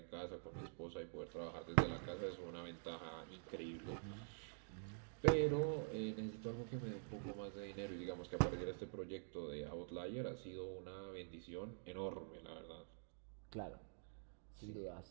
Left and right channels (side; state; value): left; silent; digital silence